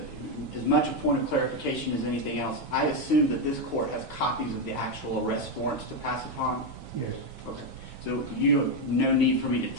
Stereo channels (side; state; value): both; normal; correlation 0.06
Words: as much a point of clarification as anything else. I assume that this court has copies of the actual arrest warrants to pass upon? Yes. Okay. So you have no need for me to